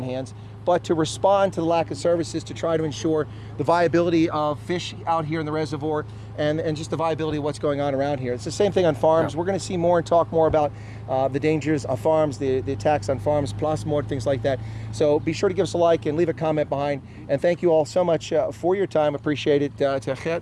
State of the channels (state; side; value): identical; both; correlation 1.00